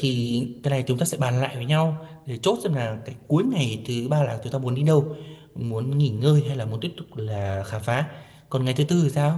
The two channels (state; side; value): identical; both; correlation 1.00